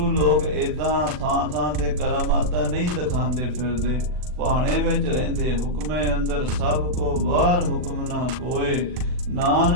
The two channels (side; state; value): left; late; 40 ms